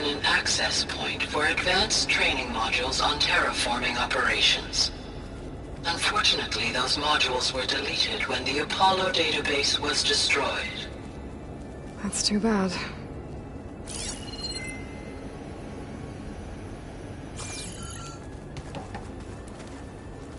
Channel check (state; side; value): identical; both; correlation 1.00